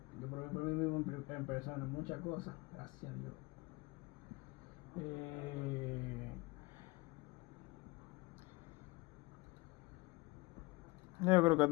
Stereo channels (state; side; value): quieter; right; 23.8 dB